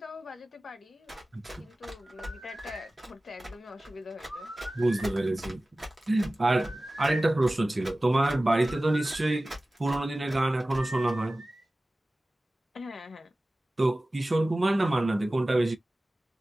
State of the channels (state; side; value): normal; both; correlation 0.97